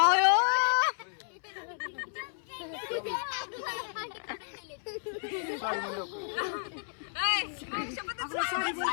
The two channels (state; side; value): silent; right; 56 dB below the other